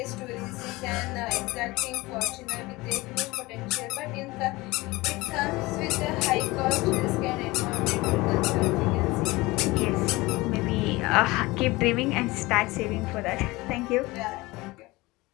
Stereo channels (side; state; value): right; quieter; 21.5 dB